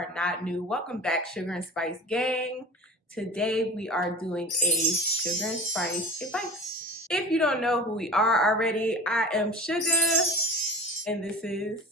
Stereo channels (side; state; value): both; normal; correlation 0.35